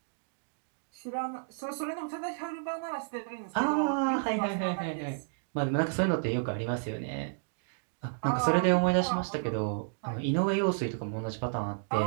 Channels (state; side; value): silent; left; digital silence